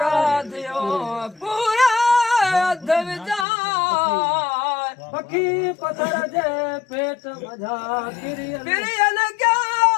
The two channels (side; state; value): right; drops out; at 3.5 s